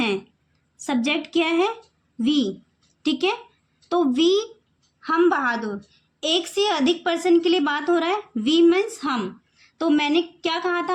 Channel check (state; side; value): identical; both; correlation 1.00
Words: सब्जेक्ट क्या है? वी, ठीक है। तो वी, हम बहादुर, एक से अधिक पर्सन के लिए बात हो रहा है, वी मीन्स हम। तो मैंने क्या कहा